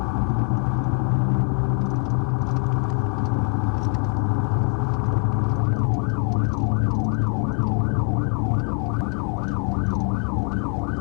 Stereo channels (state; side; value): quieter; right; 39.4 dB